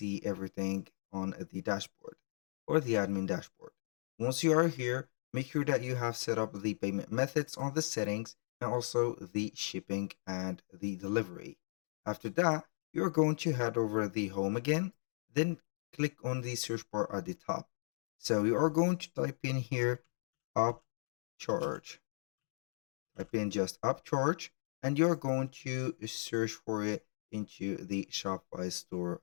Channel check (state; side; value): silent; right; digital silence